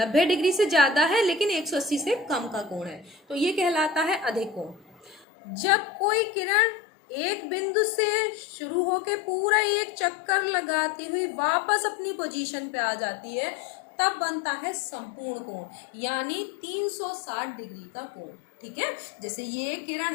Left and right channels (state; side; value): drops out; right; at 5.2 s